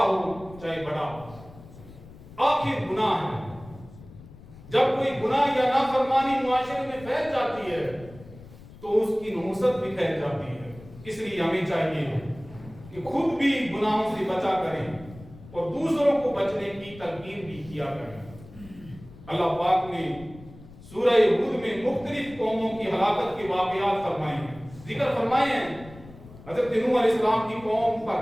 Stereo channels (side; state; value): left; noise; rumble, 19 dB below the sound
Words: چاہے بڑا ہو، آخر گناہ ہے۔ جب کوئی گناہ یا نافرمانی معاشرے میں پھیل جاتی ہے تو اس کی نحوست بھی پھیل جاتی ہے، اس لیے ہمیں چاہیے کہ خود بھی گناہوں سے بچا کریں اور دوسروں کو بچنے کی تلقین بھی کیا کریں۔ اللہ پاک نے سورہ ہود میں مختلف قوموں کی ہلاکت کے واقعات فرمائے ہیں، ذکر فرمائے ہیں۔ حضرت نوح علیہ السلام کی قوم